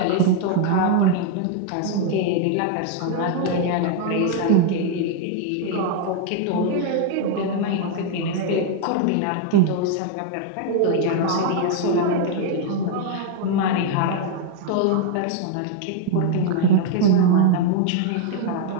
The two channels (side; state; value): both; different; correlation 0.00